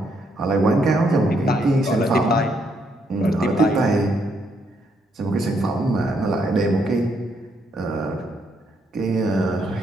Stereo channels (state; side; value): normal; both; correlation 0.74